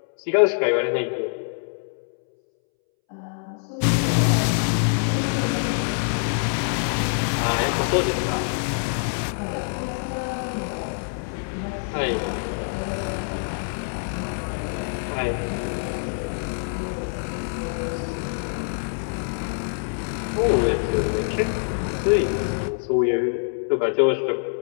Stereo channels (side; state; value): right; silent; 62 dB below the other